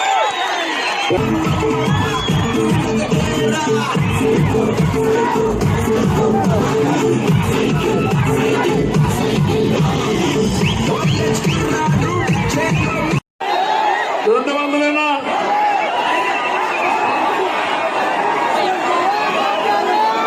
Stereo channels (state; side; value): identical; both; correlation 1.00